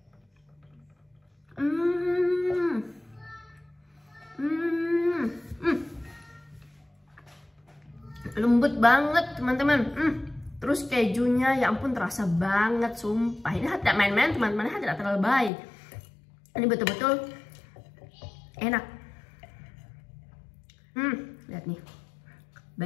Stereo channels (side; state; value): right; drops out; at 15.5 s